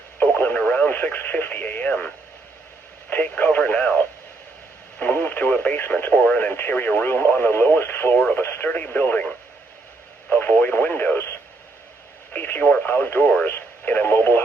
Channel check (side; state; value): left; quieter; 3.4 dB